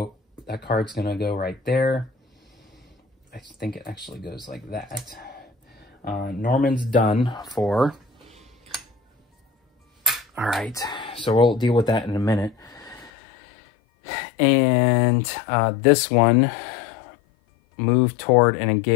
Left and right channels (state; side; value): drops out; right; at 13.1 s